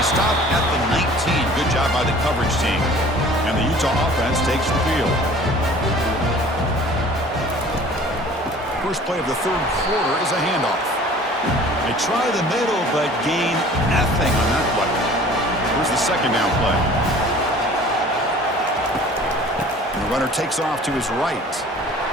he stopped at the 19. Good job by the coverage team. And the Utah offense takes the field. First play of the 3rd quarter is a handoff. They try the middle, but gain nothing on that play. Here's the second down play. The runner takes off to his right.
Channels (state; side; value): normal; both; correlation 0.47